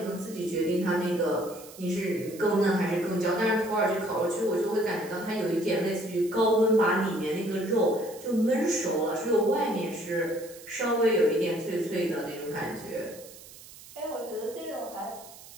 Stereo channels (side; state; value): right; noise; hiss, 18 dB below the sound